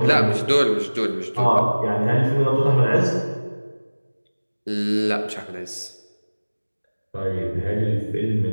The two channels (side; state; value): both; inverted; correlation -1.00